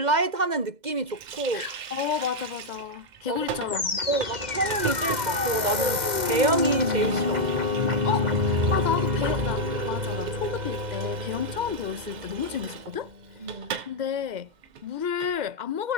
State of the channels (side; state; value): left; late; 2.1 ms